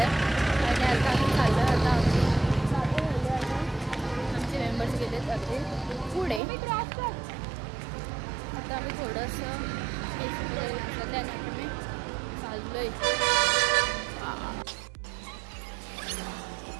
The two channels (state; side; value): drops out; left; at 6.4 s